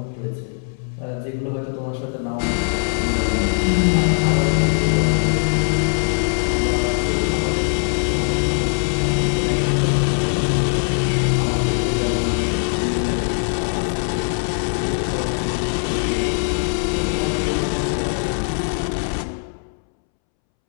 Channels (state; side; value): silent; right; 65 dB below the other